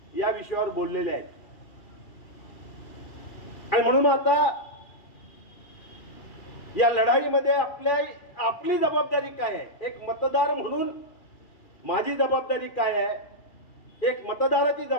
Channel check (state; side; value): late; right; 2.4 ms